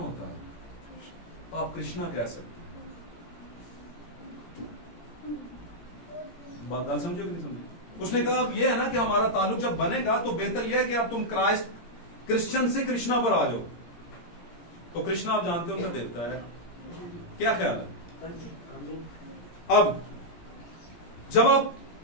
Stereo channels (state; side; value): late; right; 17 ms